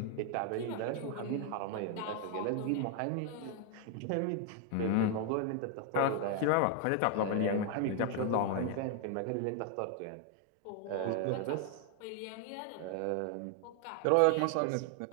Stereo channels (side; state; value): both; different; correlation 0.01